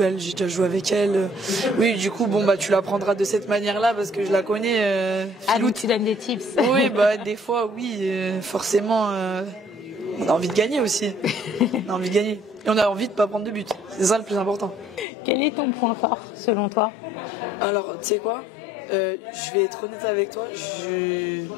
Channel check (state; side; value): drops out; right; at 15.1 s